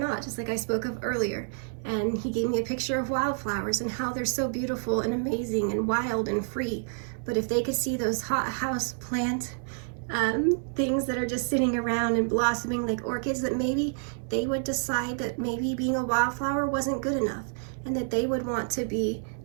just like I spoke of earlier. And he gave me a picture of wildflowers and how they're so beautiful and amazing and wild and free. But if they could see those hot house plant things that are just sitting around and blossoming like orchids, that maybe they would decide that maybe being a wildflower wasn't good enough and that they would want to be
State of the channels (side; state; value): left; silent; 59 dB below the other